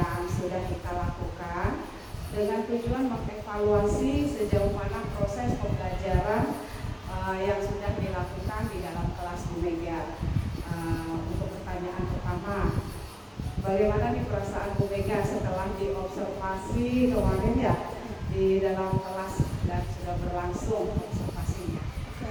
sudah kita lakukan dengan tujuan mengevaluasi sejauh mana proses pembelajaran yang sudah dilakukan di dalam kelas Bu Mega. Untuk pertanyaan pertama, bagaimana nih perasaan Bu Mega setelah diobservasi kemarin ya di dalam kelas dan sudah berlangsung observasinya?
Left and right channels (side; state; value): both; identical; correlation 1.00